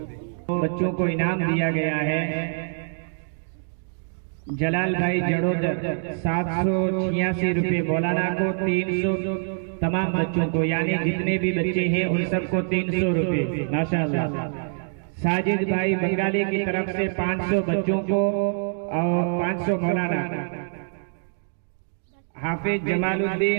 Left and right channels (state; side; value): silent; left; digital silence